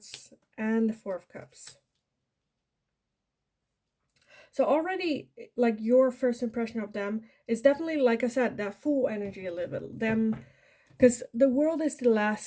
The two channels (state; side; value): identical; both; correlation 1.00